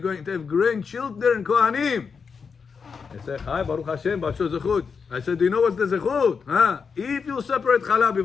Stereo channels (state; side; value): quieter; right; 5.7 dB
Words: to have grandchildren, Kohanim. He said, hi, Baruch Hashem, Bacho zechut. I said, do you know what's the zechut? Huh? If you separate challah